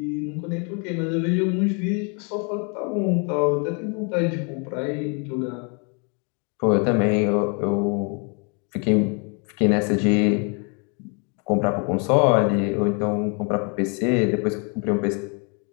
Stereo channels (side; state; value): right; quieter; 36.3 dB